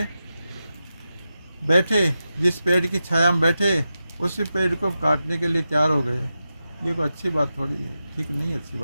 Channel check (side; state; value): both; inverted; correlation -0.90